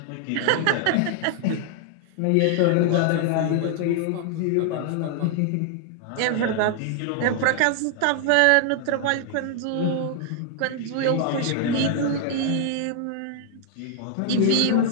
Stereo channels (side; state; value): both; different; correlation 0.00